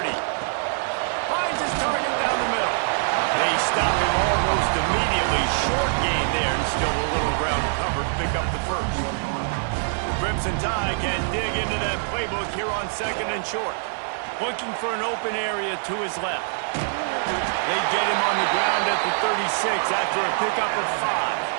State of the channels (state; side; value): silent; left; digital silence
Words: Finds his target down the middle. They stop him almost immediately. Short gain there, and still a little ground to cover to pick up the first. The Crimson Tide can dig into that playbook here on second and short. Looking for an open area to his left. They get him on the ground at the 36 after a pickup of